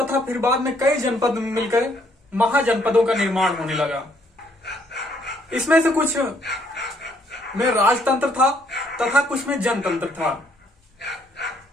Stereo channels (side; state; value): both; normal; correlation 0.68